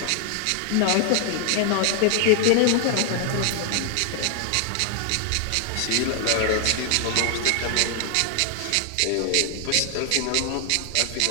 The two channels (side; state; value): both; different; correlation 0.00